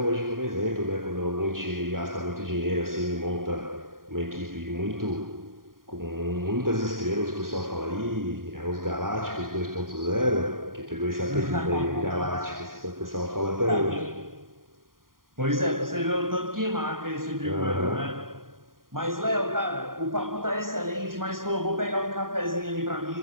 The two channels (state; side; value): late; left; 0.91 ms